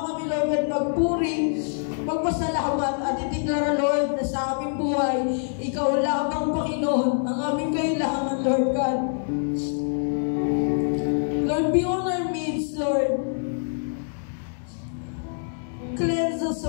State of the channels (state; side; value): silent; right; digital silence